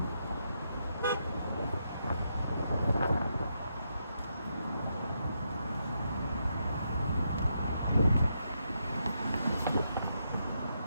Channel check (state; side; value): inverted; both; correlation -0.81